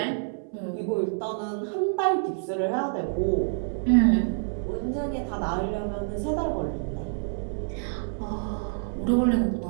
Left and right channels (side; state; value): left; silent; 60 dB below the other